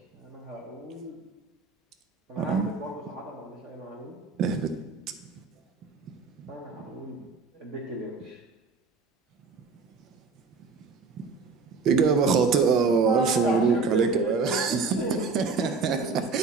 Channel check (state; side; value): quieter; left; 4.5 dB